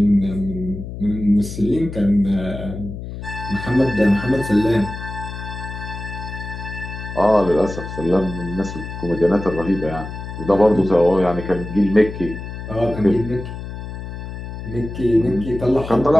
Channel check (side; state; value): left; noise; hum, 9 dB below the sound